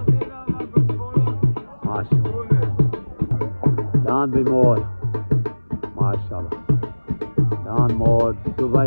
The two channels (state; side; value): inverted; both; correlation -1.00